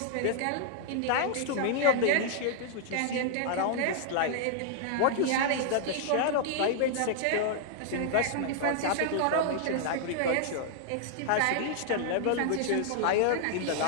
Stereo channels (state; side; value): different; both; correlation -0.01